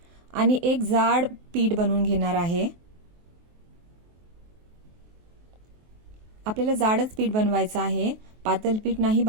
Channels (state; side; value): late; left; 23 ms